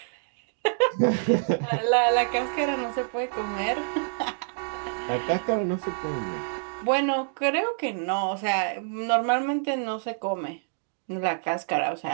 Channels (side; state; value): left; silent; digital silence